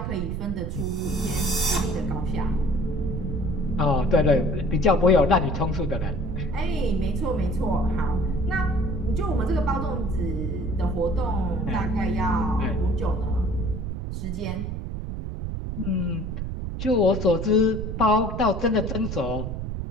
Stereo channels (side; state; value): right; noise; rumble, 4 dB below the sound